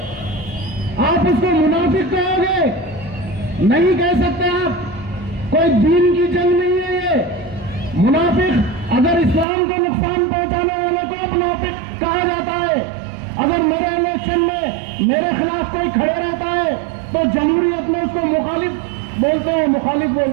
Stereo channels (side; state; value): left; drops out; at 9.5 s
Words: आप उसको मुनाफिक कहोगे, नहीं कह सकते आप। कोई दीन की जंग नहीं है ये। मुनाफिक अगर इस्लाम को नुकसान पहुंचाने वाले को मुनाफिक कहा जाता है। अगर मेरे इलेक्शन में मेरे खिलाफ कोई खड़े रहता है तो जमहूरियत में उसको मुखालिफ बोलते हैं, मुखालिफ